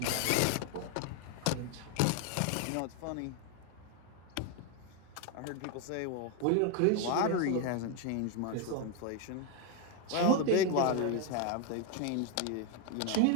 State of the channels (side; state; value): both; different; correlation 0.01